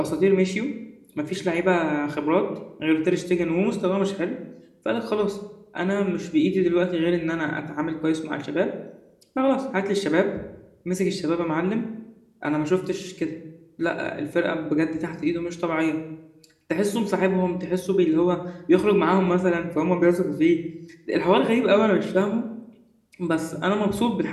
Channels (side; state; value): both; identical; correlation 1.00